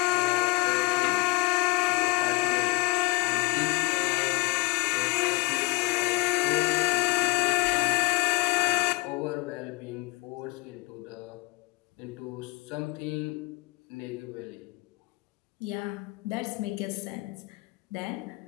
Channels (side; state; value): right; quieter; 25.2 dB